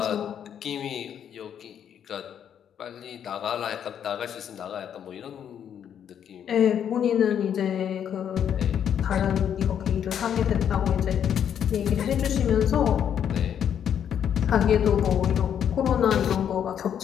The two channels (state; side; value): quieter; right; 8.9 dB